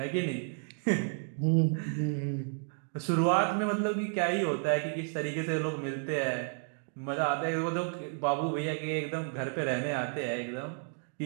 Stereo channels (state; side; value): silent; left; 57 dB below the other